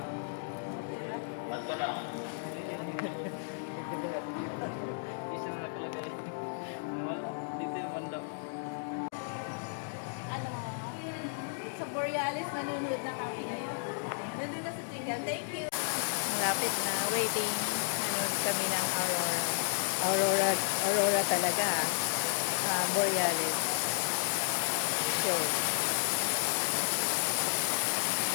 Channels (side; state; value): right; silent; digital silence